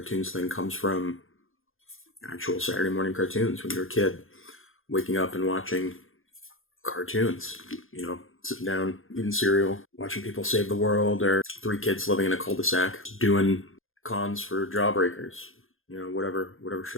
thing comes from actual Saturday morning cartoons when you're a kid, waking up and watching cartoons, you know, sitting down, eating cereal, watching people save the world, or three kids living in a cul-de-sac doing cons for Jawbreakers, you know, whatever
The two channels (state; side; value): late; right; 0.60 ms